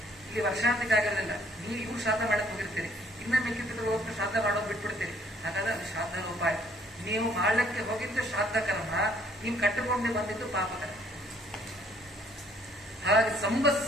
ಇಲ್ಲಿ ವರ್ಷಾಂತಿಕ ಆಗಿರಲಿಲ್ಲ. ನೀವು ಇವ್ರು ಶ್ರಾದ್ದ ಮಾಡಕ್ ಹೋಗಿರ್ತೀರಿ, ಇನ್ನ ಮಿಕ್ಕಿ ಪಿತೃಗಳು ಹೋಗ್ತಾ ಶ್ರಾದ್ದ ಮಾಡೋದು ಬಿಟ್ಬಿಡ್ತೀರಿ. ಹಾಗಾದ್ರೆ ಅದು ಶ್ರಾದ್ದ ಲೋಪ ಆಯ್ತು. ನೀವು ಮಾಡಲಿಕ್ಕೆ ಹೋಗಿದ್ದು ಶ್ರಾದ್ದ ಕರ್ಮ, ನೀವು ಕಟ್ಟಿಕೊಂಡೇ ಬಂದಿದ್ದು ಪಾಪ ಕರ್ಮ. ಹಾಗೆ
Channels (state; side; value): normal; both; correlation 0.62